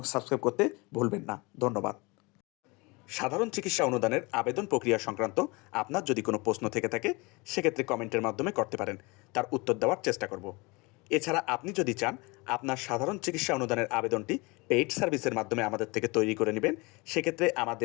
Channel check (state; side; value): quieter; right; 26.1 dB